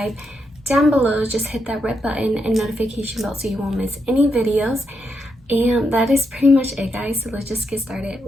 down below. Just hit that red button and notification bell so you won't miss any videos. And that is pretty much it, guys, so let's just get started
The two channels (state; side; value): normal; both; correlation 0.82